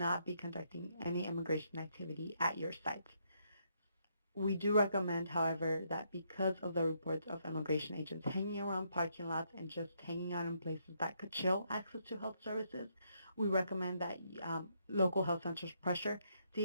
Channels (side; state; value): both; inverted; correlation -0.74